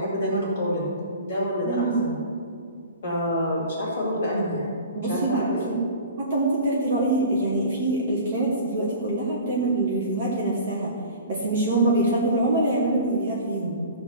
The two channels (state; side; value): inverted; both; correlation -0.40